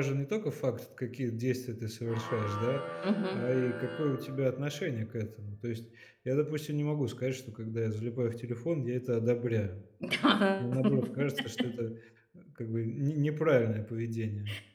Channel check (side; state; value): both; identical; correlation 1.00